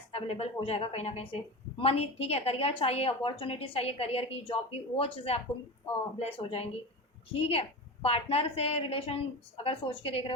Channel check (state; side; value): normal; both; correlation 0.26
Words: अवेलेबल हो जाएगा कहीं ना कहीं से, मनी, ठीक है, करियर चाहिए, अपॉर्चुनिटीज चाहिए, करियर की, जॉब की, वो चीज़ें आपको ब्लेस हो जाएंगी, ठीक है। पार्टनर से रिलेशन अगर सोच के देख